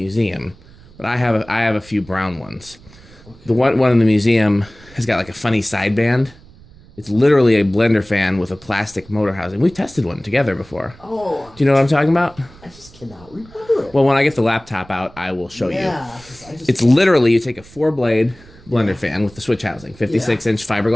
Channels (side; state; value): right; noise; rumble, 23 dB below the sound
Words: but I have a few brown ones. Okay. The white one in the museum has got like a funny sideband. It's literally a Blenderfan with a plastic motor housing. We've tested one together before. Oh. Do you know what I'm talking about? I just cannot remember it. Well, when I get the laptop out, I will show you. Yeah. It's literally, you take a 4-blade Blenderfan with the switch housing, 56-inch